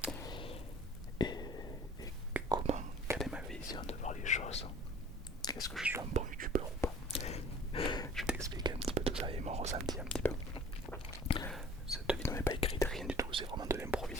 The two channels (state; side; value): normal; both; correlation 0.49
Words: Et, et comment, quelle est ma vision de voir les choses? Est-ce que je suis un bon youtubeur ou pas? Je vais t'expliquer un petit peu tout ça et mon ressenti un petit peu. Cette vidéo n'est pas écrite, rien du tout, c'est vraiment de